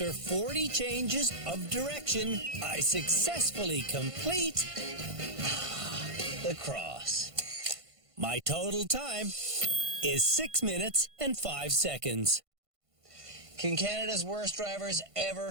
40 changes of direction, I successfully complete The Cross. my total time is 6 minutes and 5 seconds. Can Canada's worst drivers ever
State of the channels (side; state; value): left; late; 1.5 ms